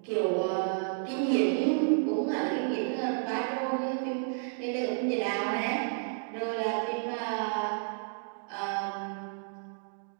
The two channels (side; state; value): left; silent; digital silence